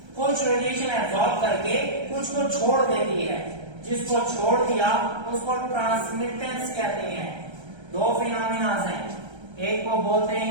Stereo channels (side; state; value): left; late; 1.3 ms